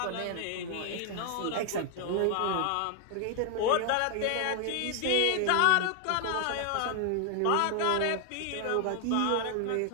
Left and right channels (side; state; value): both; different; correlation 0.00